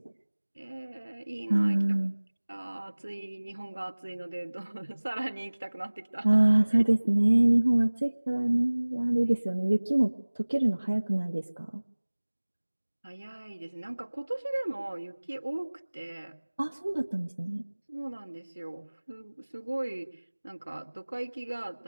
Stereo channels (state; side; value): inverted; both; correlation -1.00